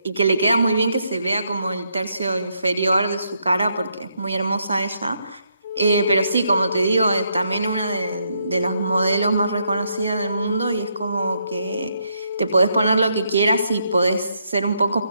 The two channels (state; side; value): inverted; both; correlation -0.76